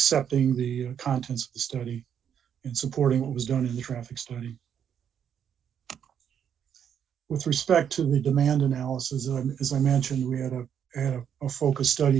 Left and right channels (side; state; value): left; quieter; 8.5 dB